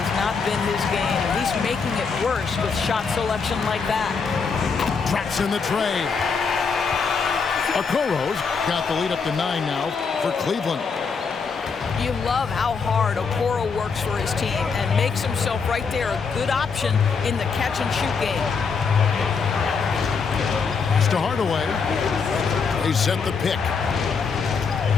not been his game, and he's making it worse with shot selection like that. Traps in the tray. Okoro's got the lead up to 9 now for Cleveland. You love how hard Okoro works for his team and makes himself right there a good option in the catch-and-shoot game. To Hardaway. They set the pick.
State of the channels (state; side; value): quieter; right; 5.4 dB